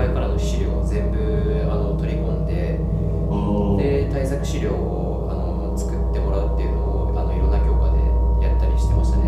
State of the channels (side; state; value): both; identical; correlation 1.00